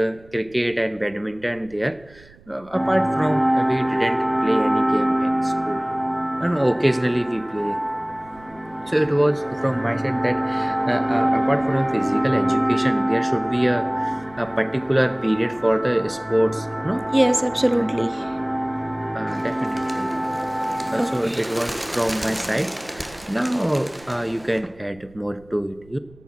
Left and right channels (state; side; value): noise; right; rumble, 25 dB below the sound